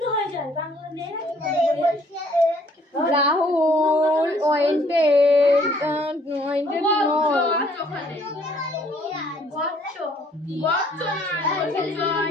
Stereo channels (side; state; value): both; normal; correlation 0.62